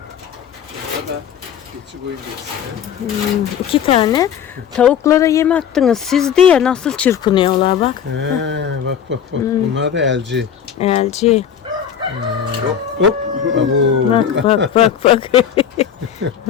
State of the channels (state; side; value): quieter; right; 8.6 dB